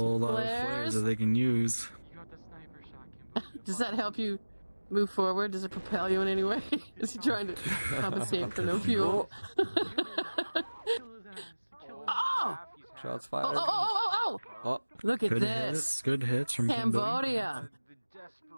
lot of flares that they can use. Does that help you move forward? Does it propel you in any way? Is he trying to compensate for no fuel? Oh! Shots fired. Oh! Look at Good this. hits. Good hits from Cambodia.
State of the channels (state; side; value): inverted; both; correlation -1.00